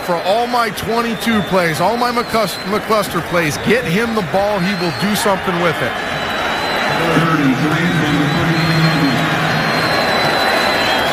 all my 22 plays, all my McCluster plays. Get him the ball. He will do something with it.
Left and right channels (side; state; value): both; identical; correlation 1.00